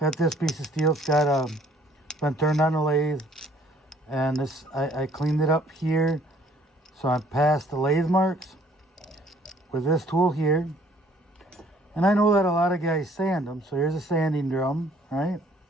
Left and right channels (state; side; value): normal; both; correlation 0.60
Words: this piece of steel. It's got been turned on the lathe, and this I cleaned it up here, so I'm past the lathe marks with this tool here. And I know that a lot of guys sand them, so here's a sanding drum, right?